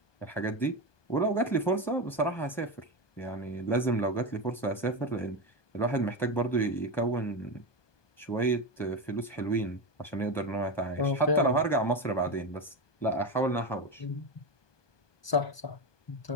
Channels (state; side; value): late; right; 1.2 ms